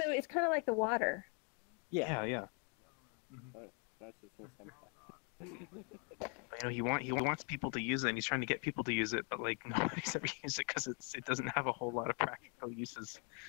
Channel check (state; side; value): quieter; right; 37.7 dB